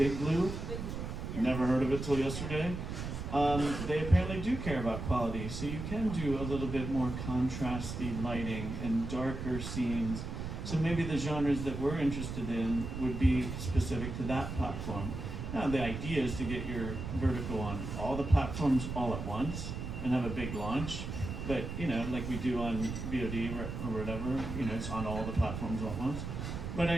Blue, never heard of it till yesterday. They apparently do care about quality, so you can do a little bit more contrasty lighting and darker scenes. So maybe the genres that we're interested in would be specific to that platform. Now the idea is to get your vertical on all the platforms all at once and have a big launch. But, you know, like we do on VOD or whatever, you know, it's on all the platforms all at once.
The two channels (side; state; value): right; noise; rumble, 6 dB below the sound